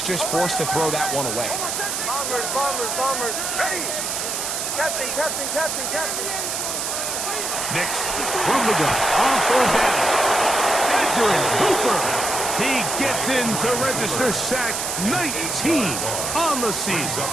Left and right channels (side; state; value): right; noise; hiss, 2 dB below the sound